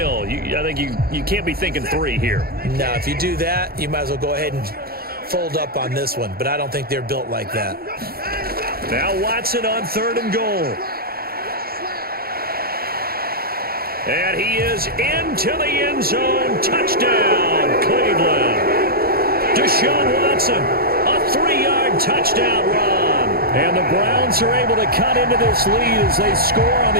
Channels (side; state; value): left; late; 0.44 ms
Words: I think you can't be thinking 3 here. No, if you do that, you might as well go ahead and fold up on this one. But I don't think they're built like that. Now Watson on 3rd and goal. And he is into the end zone. Touchdown, Cleveland. Deshaun Watson, a 3-yard touchdown run. And the Browns are able to cut into this lead as they score on